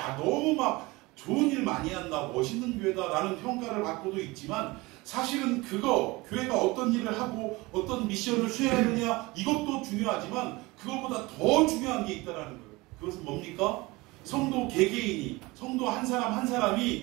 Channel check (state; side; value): quieter; left; 22.5 dB